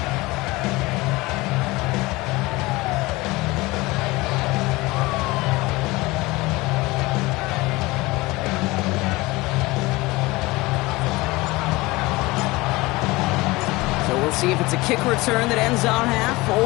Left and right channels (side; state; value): right; quieter; 21.7 dB